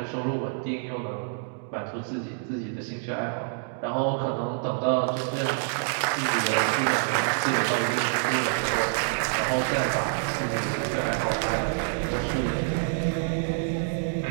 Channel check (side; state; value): left; silent; digital silence